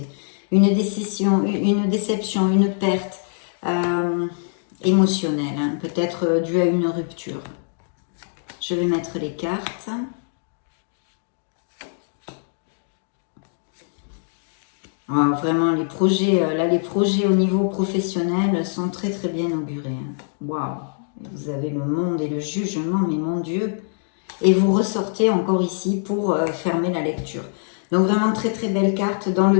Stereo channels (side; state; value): right; silent; digital silence